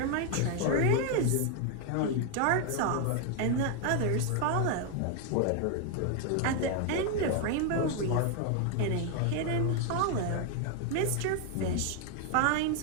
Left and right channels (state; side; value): different; both; correlation 0.01